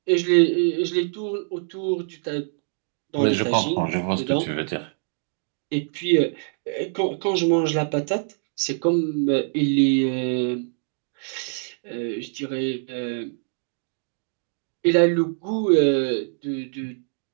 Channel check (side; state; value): left; silent; digital silence